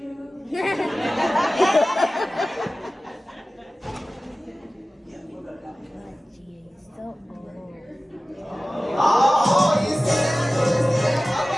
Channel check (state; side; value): normal; both; correlation 0.96